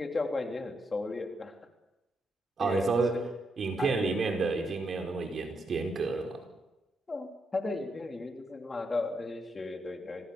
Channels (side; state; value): both; normal; correlation 0.81